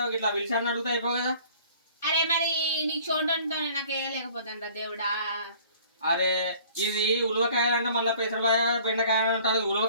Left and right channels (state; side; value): inverted; both; correlation -0.52